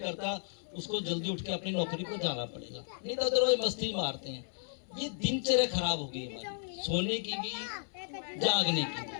उसको जल्दी उठ के अपनी नौकरी को जाना पड़ेगा, नहीं तो अदरवाइज मस्ती मारते हैं। ये दिनचर्या खराब हो गई हमारी, सोने की भी, जागने की भी।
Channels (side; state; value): right; silent; 55 dB below the other